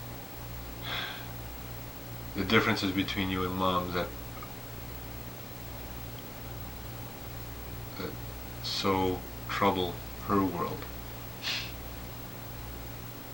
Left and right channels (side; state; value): left; noise; hiss, 23 dB below the sound